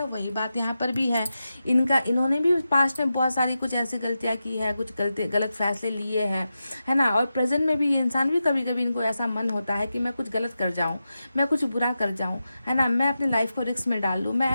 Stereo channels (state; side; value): inverted; both; correlation -0.90